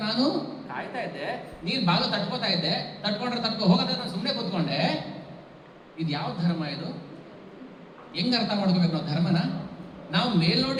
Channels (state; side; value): identical; both; correlation 1.00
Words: ನಾನು ಕಾಯ್ತಾ ಇದ್ದೆ, ನೀನು ಬಾಗಿಲು ತಟ್ಕೋತಾ ಇದ್ದೆ, ತಟ್ಕೊ ಹೋಗೋದ್ರೆ ನಾನು ಸುಮ್ಮನೆ ಕೂತ್ಕೊಂಡೆ. ಇದು ಯಾವ ಧರ್ಮ ಇದು? ಹೆಂಗ್ ಅರ್ಥ ಮಾಡ್ಕೋಬೇಕು ನಾವು ಧರ್ಮನ? ನಾವು